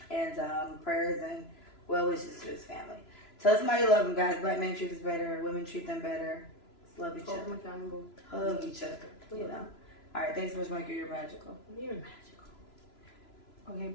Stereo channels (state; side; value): late; right; 3.0 ms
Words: And prayers and well wishes to his family. Tell somebody you love them, guys. Black men treat us better. Women treat them better. Just love each other. Hug each other. You know. All right. Thanks so much, Michael. You're magical. You're magical. Okay,